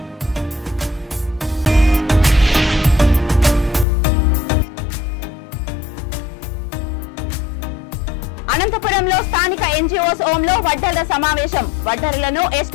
అనంతపురంలో స్థానిక ఎన్జీఓస్ హోంలో వడ్డర్ల సమావేశం. వడ్డర్లను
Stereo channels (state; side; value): drops out; right; at 3.9 s